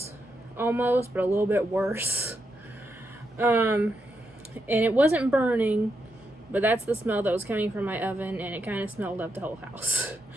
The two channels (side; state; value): both; normal; correlation 0.83